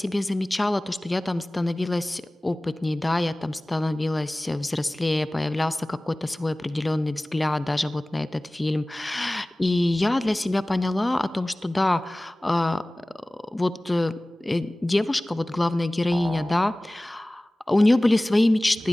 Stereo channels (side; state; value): both; normal; correlation 0.98